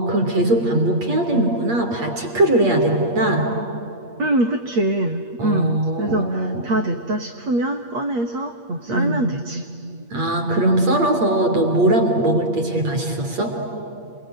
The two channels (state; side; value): late; left; 8.5 ms